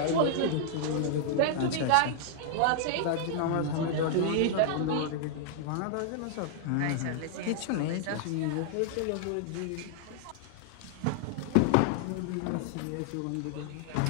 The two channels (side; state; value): both; different; correlation -0.01